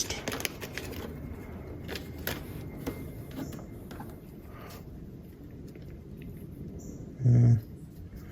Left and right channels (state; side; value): identical; both; correlation 1.00